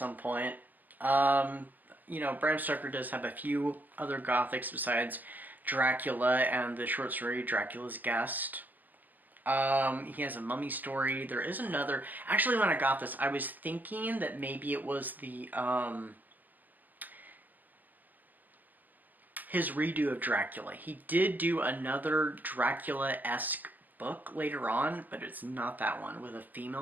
point. You know, Bram Stoker does have a few other Gothics besides Dracula and the short story Dracula's Guest. He has a mummy story. There is another... Actually, when I got this, I was thinking that maybe it was the, his redo of Dracula. He did do another Dracula-esque book later on, but it's not that one, with a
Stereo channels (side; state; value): left; late; 0.084 ms